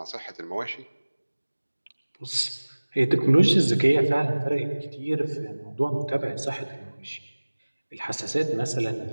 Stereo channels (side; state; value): both; inverted; correlation -1.00